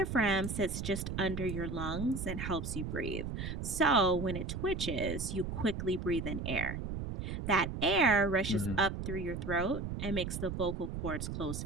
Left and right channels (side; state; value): right; noise; rumble, 5 dB below the sound